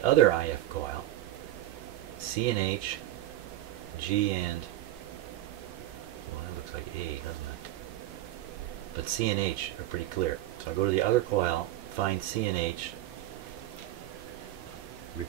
other IF coil. C and H, G and, well, that looks like A, doesn't it? But C and H are pretty clear. So I go to the other coil, find C and H,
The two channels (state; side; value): quieter; left; 14.7 dB